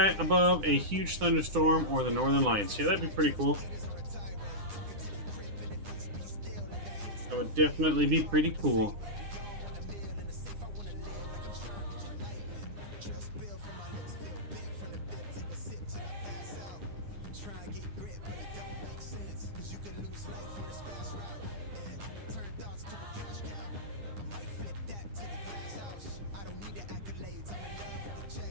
above a huge thunderstorm or the northern lights. Yeah, that'd be pretty cool. That would definitely be pretty cool.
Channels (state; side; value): late; left; 9.9 ms